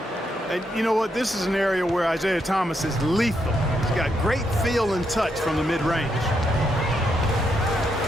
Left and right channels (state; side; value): normal; both; correlation 0.79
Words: And you know what? This is an area where Isaiah Thomas is lethal. He's got great feel and touch from the mid-range.